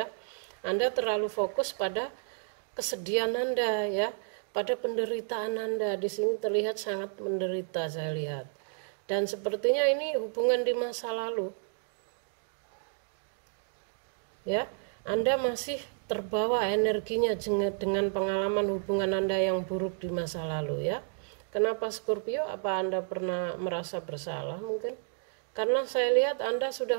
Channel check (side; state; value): left; silent; digital silence